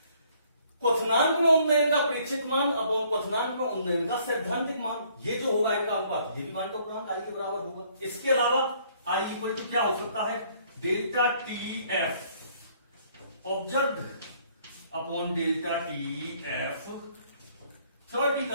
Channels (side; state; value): both; inverted; correlation -0.63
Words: क्वथनांक में उन्नयन का प्रेक्षित मान अपॉन क्वथनांक में उन्नयन का सैद्धांतिक मान, ये जो होगा इनका अनुपात ये भी वान टॉप गुणांक आई के बराबर होगा। इसके अलावा आई इक्वल टू क्या हो सकता है, delta T F observed upon delta T F